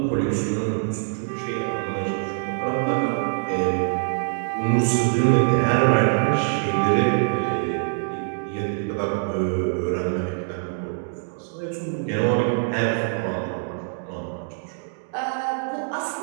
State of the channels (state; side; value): silent; left; digital silence